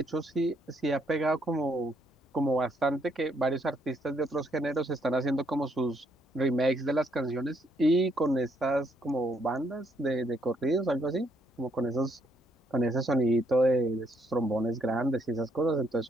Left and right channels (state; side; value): normal; both; correlation 0.72